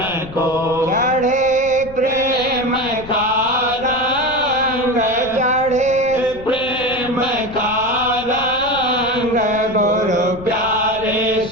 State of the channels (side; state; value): left; noise; rumble, 17 dB below the sound